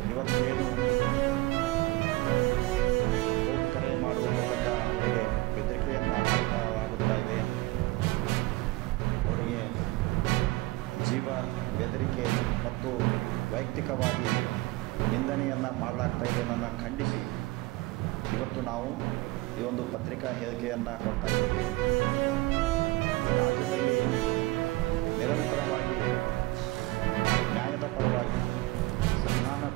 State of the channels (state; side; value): quieter; left; 20.8 dB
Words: ಇವತ್ತೇನು ಫೋನ್ ಕರೆ ಮಾಡುವ ಮೂಲಕ ಅವರಿಗೆ ಬೆದರಿಕೆಯನ್ನು ಹಾಕಲಾಗುತ್ತಾ ಇದೆ, ಅವರಿಗೆ ಜೀವ ಬೆದರಿಕೆ ಮತ್ತು ವೈಯಕ್ತಿಕವಾಗಿ ನಿಂದನೆಯನ್ನು ಮಾಡಲಾಗ್ತಾ ಇದೆ ಅನ್ನೋದನ್ನು ಖಂಡಿಸಿ ಇವತ್ತು ನಾವು ಈ ಒಂದು ಪತ್ರಿಕಾ ಹೇಳಿಕೆಯನ್ನು ಕೊಡ್ತಾ ಇದ್ದೇವೆ. ರಾಜ್ಯದಲ್ಲಿ ನಿರಂತರವಾಗಿ ನ್ಯಾಯದ ಪರವಾಗಿ